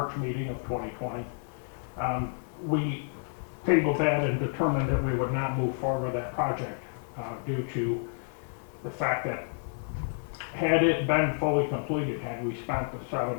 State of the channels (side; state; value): right; silent; 58 dB below the other